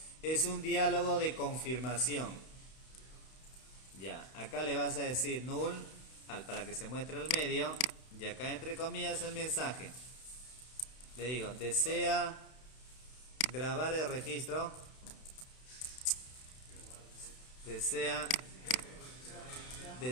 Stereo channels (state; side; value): late; right; 32 ms